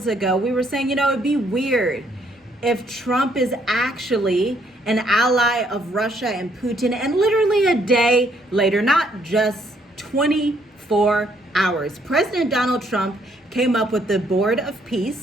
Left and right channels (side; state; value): both; normal; correlation 0.69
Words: ago we were saying, it'd be weird if Trump is actually an ally of Russia and Putin, and literally a day later, not just 24 hours, President Donald Trump came up with the Board of